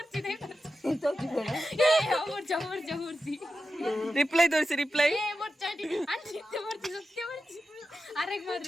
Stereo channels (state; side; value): normal; both; correlation 0.91